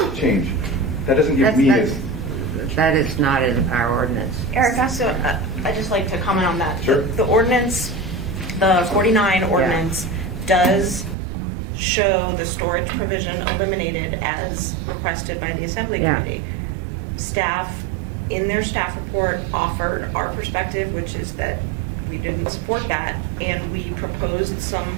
change. That doesn't give me as... That is not in our ordinance. Erica, so I'd just like to comment on that. Sure. The ordinance, the 49 ordinance, does show the storage provision eliminated as requested by the Assembly Committee. Staff, in their staff report, offered our perspective, which is that we didn't support that, and we proposed some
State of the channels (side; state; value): left; drops out; at 11.2 s